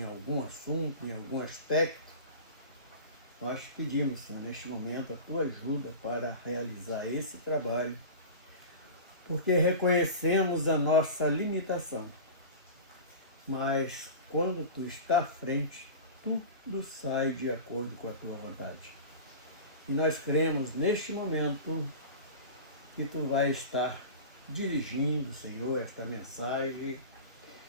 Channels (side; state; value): both; inverted; correlation -0.33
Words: algum assunto, em algum aspecto. Nós pedimos, Senhor, neste momento, a Tua ajuda para realizar esse trabalho, porque reconhecemos a nossa limitação. Mas quando Tu está à frente, tudo sai de acordo com a Tua vontade. E nós cremos neste momento que Tu vai estar dirigindo, Senhor, esta mensagem